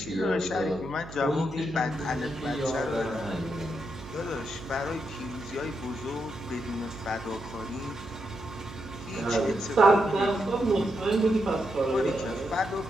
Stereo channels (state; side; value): noise; right; hum, 13 dB below the sound